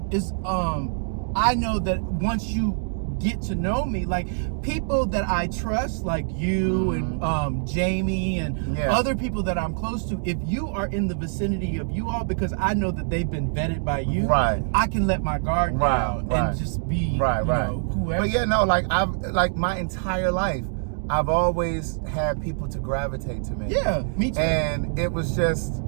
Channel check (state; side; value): silent; left; digital silence